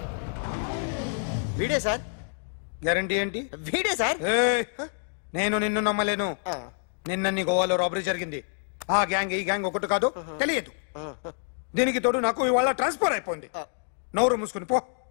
వీడే సార్ గ్యారంటీ ఏంటి? వీడే సార్ నేను నిన్ను నమ్మలేను. నిన్న నీ గోవాలో రాబరీ జరిగింది. ఆ గ్యాంగ్ ఈ గ్యాంగ్ ఒకటి కాదు, తెలియదు. దీనికి తోడు నాకు ఇవాళ ట్రాన్స్ఫర్ అయిపోయింది. నోరు మూసుకుని పో.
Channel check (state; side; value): silent; right; digital silence